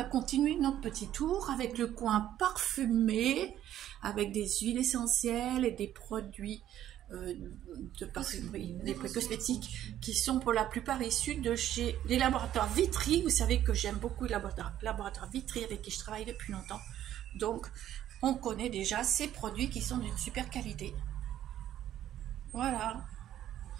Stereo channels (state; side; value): quieter; left; 11.8 dB